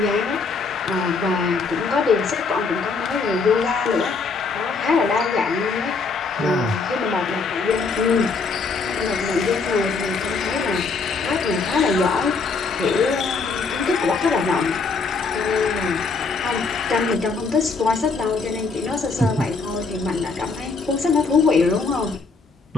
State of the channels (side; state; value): right; quieter; 4.4 dB